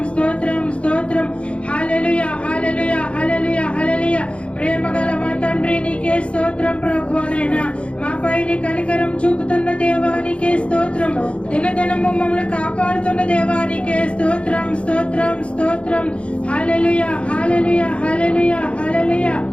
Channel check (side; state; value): right; late; 0.060 ms